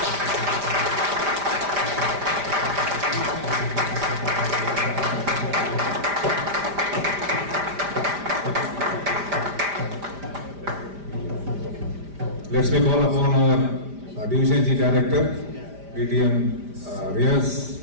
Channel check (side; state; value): left; late; 5.0 ms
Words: Let's make call upon our Division G Director, ATM Riaz,